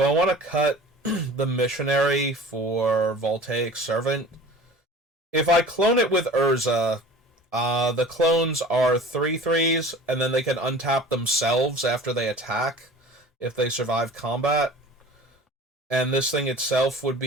I want to cut the Missionary for Voltaic Servant? If I clone it with Urza, The clones are 3/3s, and then they can untap themselves after they attack if they survive combat. And this thing itself would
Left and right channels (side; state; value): both; normal; correlation 0.42